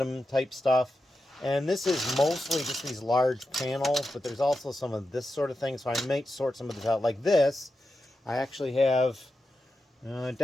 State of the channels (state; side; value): normal; both; correlation 0.89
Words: type stuff. And this is mostly just these large panels, but there's also some of this sort of thing, so I might sort some of this out. Like this, I actually have